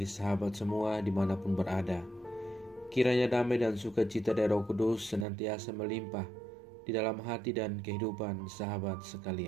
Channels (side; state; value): left; drops out; at 5.2 s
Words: sahabat semua dimanapun berada. Kiranya damai dan sukacita dari Roh Kudus senantiasa melimpah di dalam hati dan kehidupan sahabat